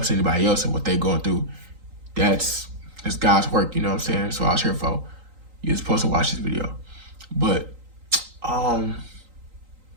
anybody else and what they're going through, that's God's work, you know what I'm saying? So I was here for. You're supposed to watch this video. But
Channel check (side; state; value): left; late; 3.8 ms